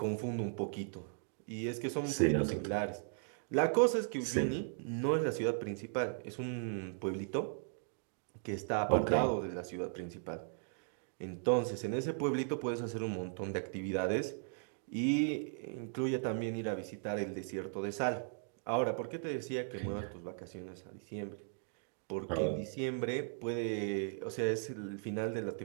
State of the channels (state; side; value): silent; left; digital silence